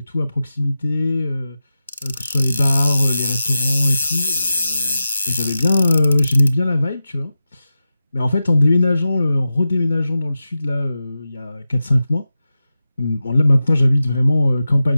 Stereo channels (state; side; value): inverted; both; correlation -0.93